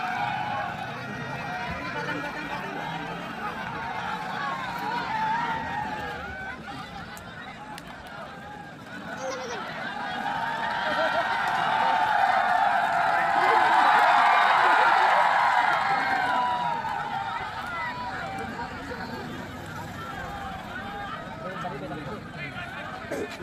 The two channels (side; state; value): both; identical; correlation 1.00